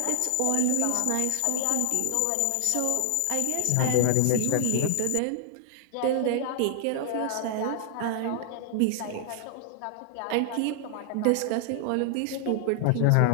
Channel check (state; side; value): different; both; correlation 0.00